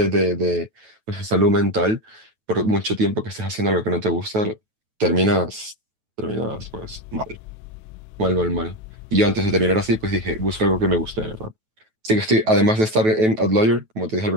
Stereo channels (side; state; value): left; late; 9.2 ms